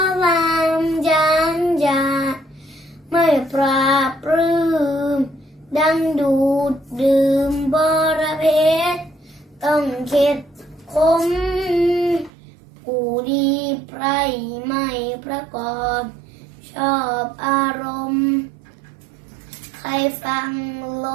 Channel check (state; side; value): drops out; left; at 12.3 s